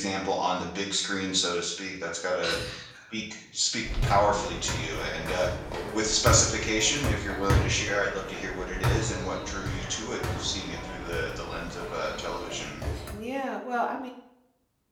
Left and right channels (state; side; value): identical; both; correlation 1.00